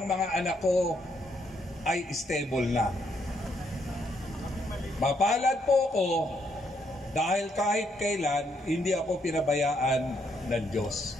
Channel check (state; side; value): normal; both; correlation 0.74